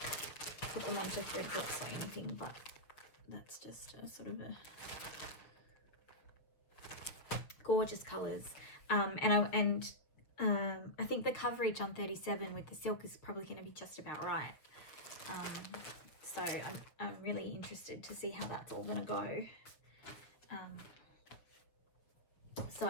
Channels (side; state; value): right; late; 6.7 ms